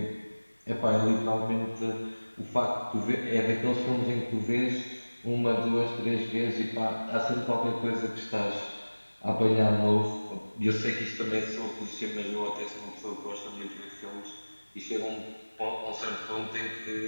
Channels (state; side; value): inverted; both; correlation -1.00